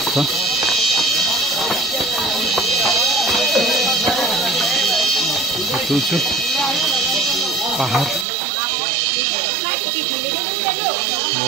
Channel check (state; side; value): drops out; left; at 8.2 s